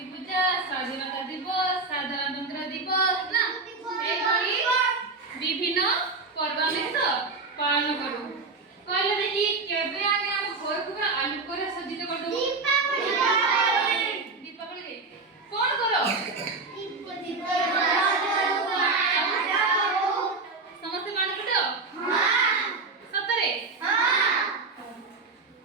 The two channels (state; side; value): quieter; left; 3.8 dB